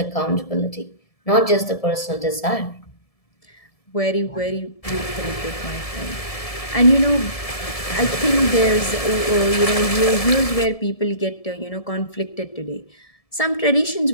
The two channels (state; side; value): late; right; 1.7 ms